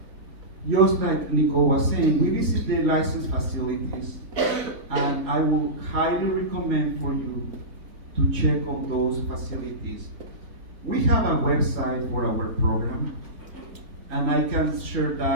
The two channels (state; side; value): late; left; 3.8 ms